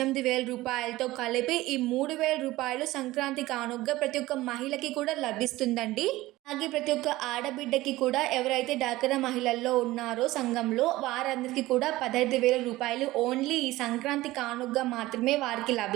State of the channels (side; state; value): left; quieter; 17.9 dB